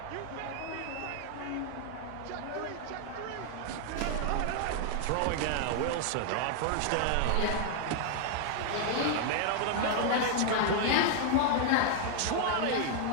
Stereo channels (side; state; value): both; different; correlation 0.00